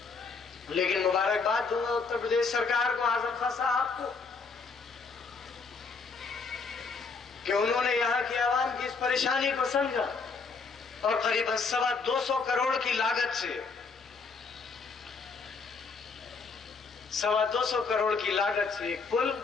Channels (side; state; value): right; quieter; 4.8 dB